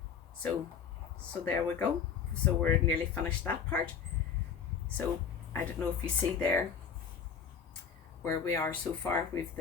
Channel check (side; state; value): right; quieter; 6.8 dB